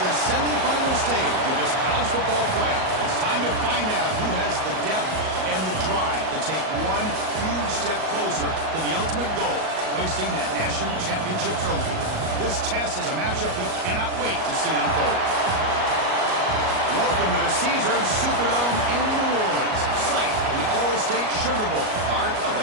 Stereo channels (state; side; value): late; left; 38 ms